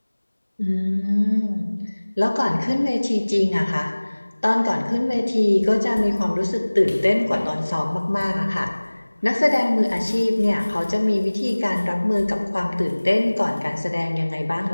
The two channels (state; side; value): inverted; both; correlation -1.00